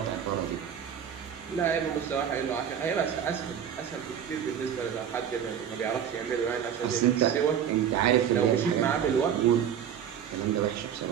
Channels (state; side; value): quieter; left; 8.7 dB